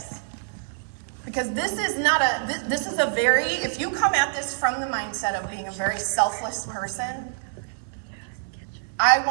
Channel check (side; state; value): left; silent; digital silence